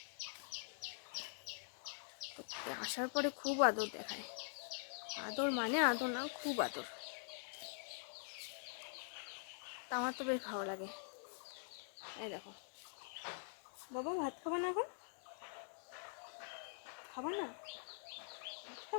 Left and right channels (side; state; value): right; silent; digital silence